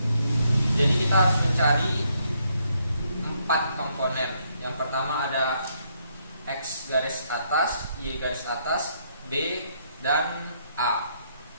Jadi kita harus mencari 4 komponen. Yang pertama ada X garis atas, Y garis atas, B, dan A.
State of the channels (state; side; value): inverted; both; correlation -0.73